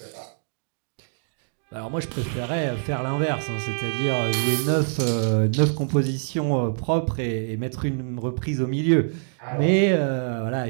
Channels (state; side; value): silent; left; digital silence